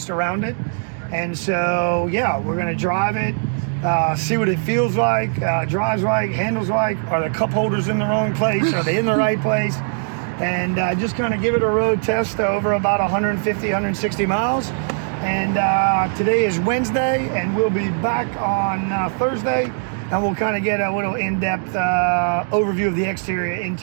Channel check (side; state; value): left; silent; digital silence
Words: around it. And so, yeah, we're gonna drive it, see what it feels like, drives like, handles like. Are the cup holders in the wrong place? Are they in the right place? And just kind of give it a road test over about 150, 160 miles. And today is Wednesday, and we'll be back on Thursday. And we'll kind of get a little in-depth overview of the exterior,